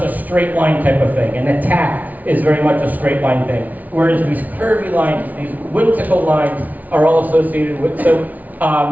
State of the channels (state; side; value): late; left; 0.075 ms